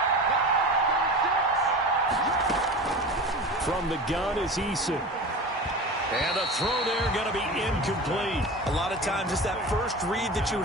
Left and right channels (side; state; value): both; normal; correlation 0.32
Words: From the gun is Eason. And the throw there going to be incomplete. A lot of times it's that first read that you